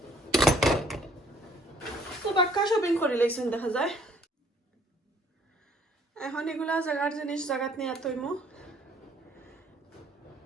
তো বাক্কা শপিং করে লাইছেন দেখা যায় এখন এগুলা জায়গার জিনিস জায়গাত নিয়ে তৈমো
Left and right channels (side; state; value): both; normal; correlation 0.60